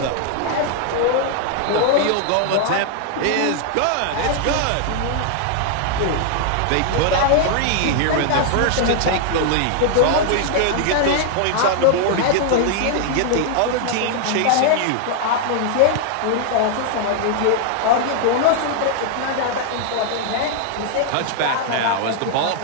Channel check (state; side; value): different; both; correlation 0.00